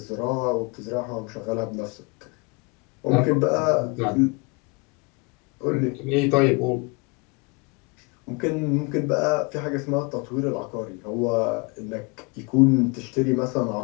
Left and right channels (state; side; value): quieter; right; 29.4 dB